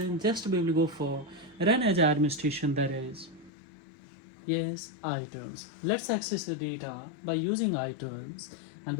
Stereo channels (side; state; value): right; drops out; at 3.5 s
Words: just we will go for run as administration, that is yes, iTunes. Let's access the data by using iTunes and